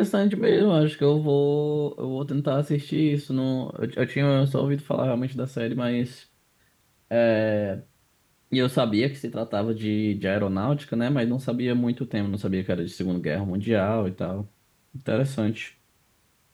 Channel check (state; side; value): identical; both; correlation 1.00